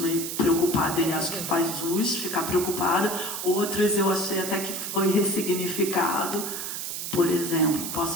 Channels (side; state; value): right; noise; hiss, 5 dB below the sound